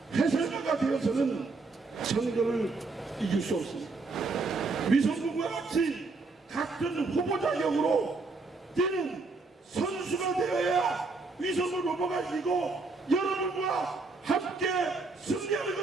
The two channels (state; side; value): quieter; left; 3.8 dB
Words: 해설가가 되어서는 선거를 이길 수 없습니다. 위성원과 같이 같은 후보 자격으로 뛰는 선수가 되어야 위성원 후보가 이기고 여러분과 함께 승리하는